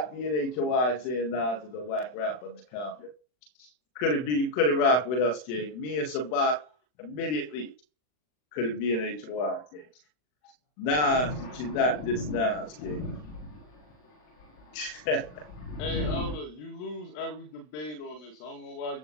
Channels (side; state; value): right; late; 40 ms